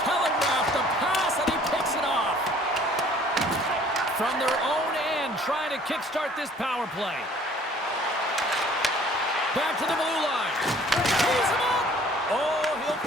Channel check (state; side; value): normal; both; correlation 0.55